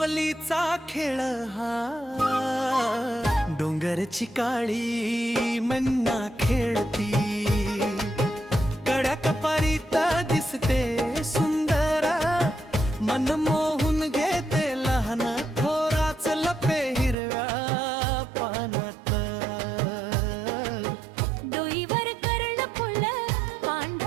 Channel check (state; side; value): drops out; left; at 17.2 s